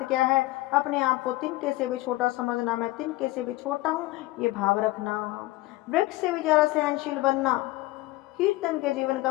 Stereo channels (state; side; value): quieter; right; 18.9 dB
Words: क्या है, अपने आप को तिनके से भी छोटा समझना, मैं तिनके से भी छोटा हूँ, ये भाव रखना। वृक्ष से भी जरा सहनशील बनना, कीर्तन के जीवन